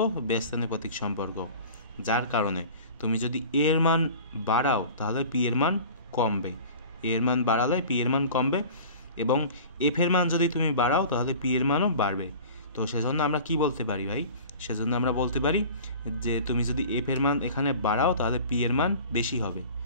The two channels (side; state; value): both; inverted; correlation -0.41